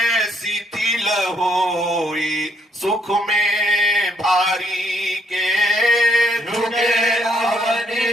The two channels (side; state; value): both; normal; correlation 0.70